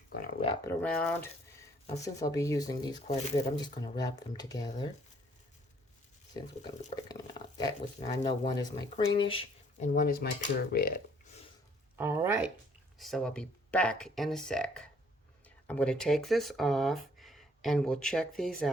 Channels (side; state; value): both; normal; correlation 0.62